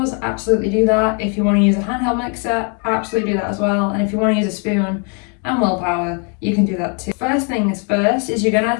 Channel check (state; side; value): quieter; right; 38.2 dB